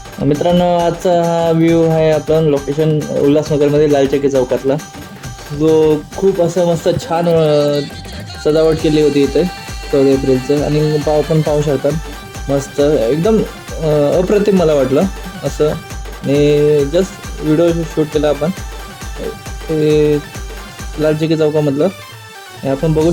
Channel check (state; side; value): identical; both; correlation 1.00